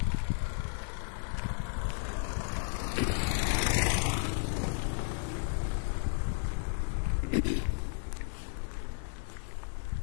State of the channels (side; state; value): right; silent; digital silence